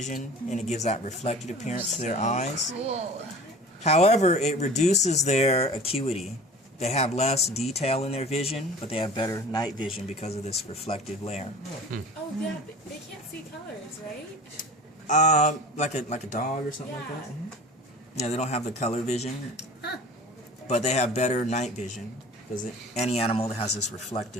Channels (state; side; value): normal; both; correlation 0.40